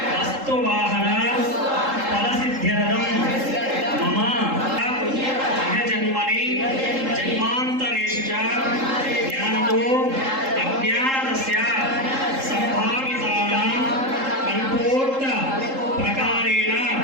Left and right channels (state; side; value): late; left; 3.7 ms